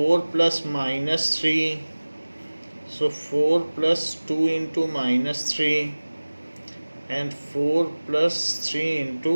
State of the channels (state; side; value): inverted; both; correlation -1.00